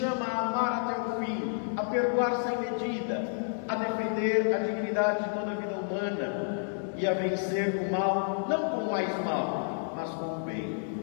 a amar até o fim, a perdoar sem medida, a defender a dignidade de toda a vida humana e a vencer o mal, não com mais mal, mas com o bem?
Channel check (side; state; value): right; silent; digital silence